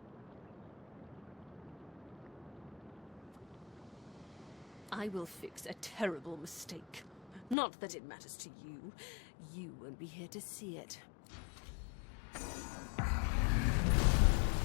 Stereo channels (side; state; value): right; drops out; at 7.6 s